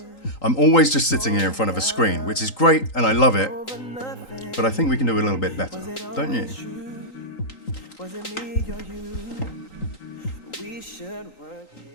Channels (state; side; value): late; right; 3.9 ms